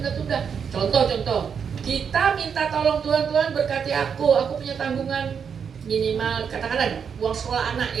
Contoh, kita minta tolong Tuhan berkati aku punya tanggungan minimal, katakanlah uang sekolah anak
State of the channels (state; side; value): quieter; left; 6.9 dB